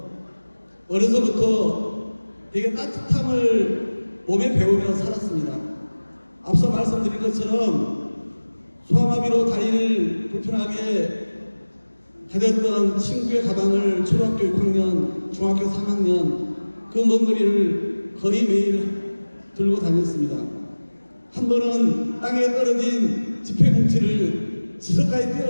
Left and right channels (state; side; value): inverted; both; correlation -1.00